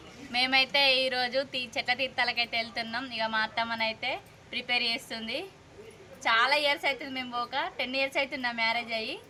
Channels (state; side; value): identical; both; correlation 1.00